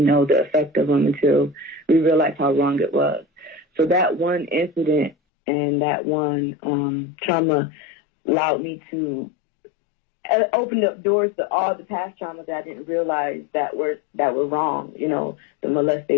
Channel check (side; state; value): right; drops out; at 5.2 s